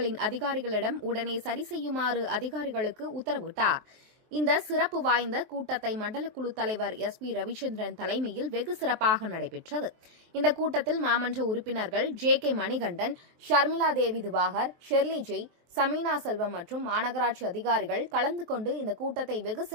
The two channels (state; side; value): late; left; 23 ms